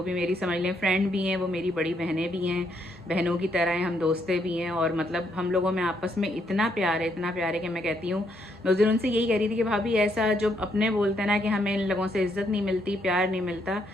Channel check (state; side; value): normal; both; correlation 0.74